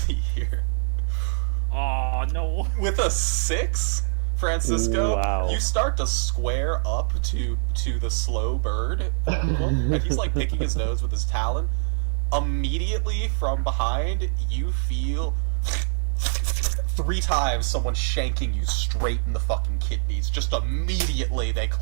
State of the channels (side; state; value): left; silent; digital silence